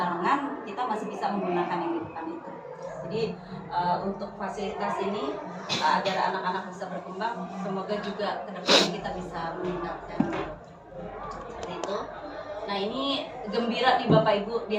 kita masih bisa menggunakan yang di depan itu. Jadi untuk fasilitas ini agar anak-anak bisa berkembang, semoga juga kedepannya kita bisa meningkatkan seperti itu. Nah ini gembira nih Bapak Ibu,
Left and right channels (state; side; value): identical; both; correlation 1.00